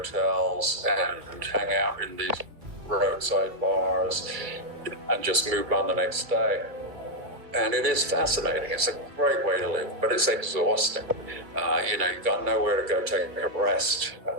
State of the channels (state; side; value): late; left; 2.1 ms